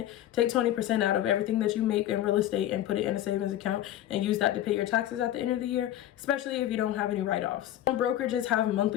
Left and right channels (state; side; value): quieter; right; 12.7 dB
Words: Take 20% out of everything that you make in real estate and put it in a savings account and use that to pay your taxes at the end of the year, especially if you don't have any write-offs. Some brokerages have